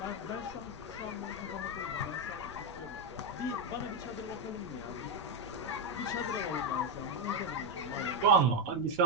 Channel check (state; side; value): noise; right; rumble, 20 dB below the sound